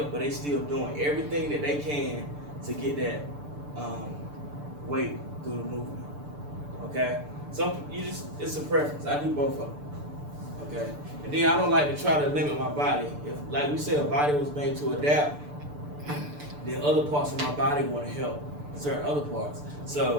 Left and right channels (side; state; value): left; late; 6.8 ms